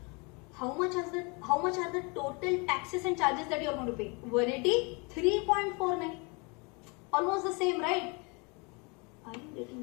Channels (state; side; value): quieter; right; 30.9 dB